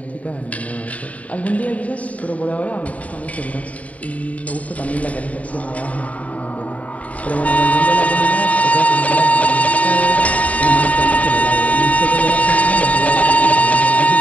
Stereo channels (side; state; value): right; late; 0.069 ms